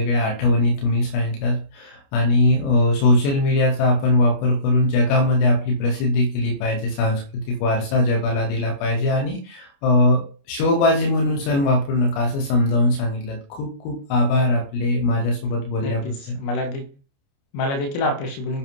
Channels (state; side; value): late; right; 29 ms